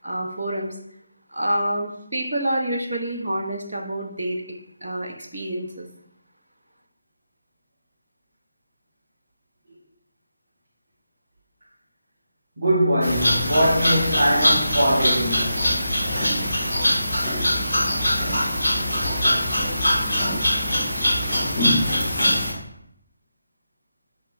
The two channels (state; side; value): inverted; both; correlation -0.88